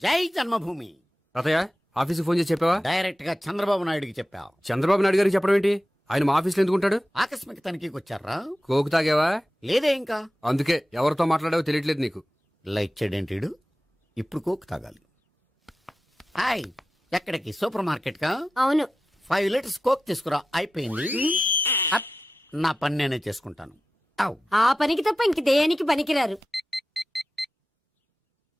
జై జన్మభూమి. తాతయ్య, ఆఫీస్కి ఫోన్ చేసి చెప్పావా? డైరెక్ట్ గా చంద్రబాబు నాయుడుకి చెప్పావు. చంద్రబాబు నాయుడు గారికి చెప్పడం ఏంటి? ఆయన మా ఆఫీస్లో ఎందుకుంటాడు? ఆకస్మిక తనిఖీకి వచ్చారా? కోకు తాగావా? లేదే ఇంకా. అందుకే ఎవరితో మాట్లాడావో తెలియట్లేదు నీకు. లైట్ చేయడేంటిడు? ఇప్పుడు కోక్ తాగాలి. హాయ్, ఎక్కడికి? సూపర్ మార్కెట్ కా? అవును. 5 లీటర్స్ కోక్ తీసుకురా. అయిపోయింది. అప్, నా పని నేనే చేసుకుంటాను. ఔ. ఆ పనికి తప్ప ఇంక దేనికి పనికిరారు.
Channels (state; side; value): normal; both; correlation 0.94